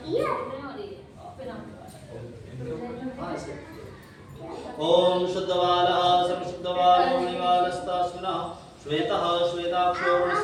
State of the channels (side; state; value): both; identical; correlation 1.00